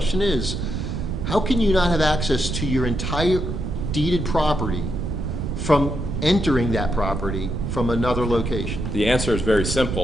is, how can you not have access to your entire deeded property from entering that property from another location? The answer is very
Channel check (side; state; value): right; noise; rumble, 3 dB below the sound